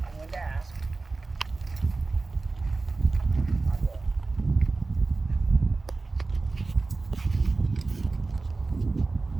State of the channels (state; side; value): quieter; left; 3.6 dB